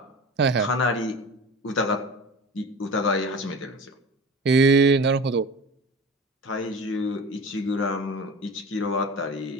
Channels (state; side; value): normal; both; correlation 0.34